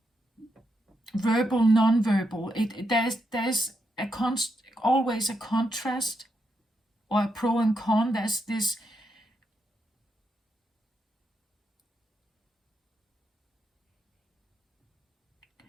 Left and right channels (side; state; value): both; normal; correlation 0.82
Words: Verbal, non-verbal. There's always a contrast or a pro and con. There's this.